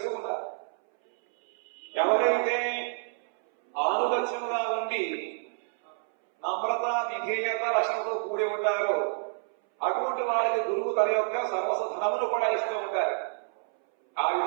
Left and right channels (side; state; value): left; silent; 59 dB below the other